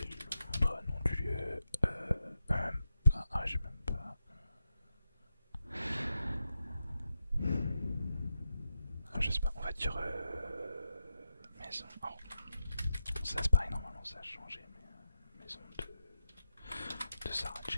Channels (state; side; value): inverted; both; correlation -0.87